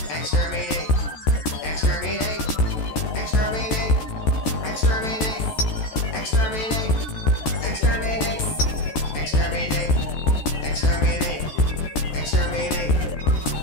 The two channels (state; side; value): late; right; 14 ms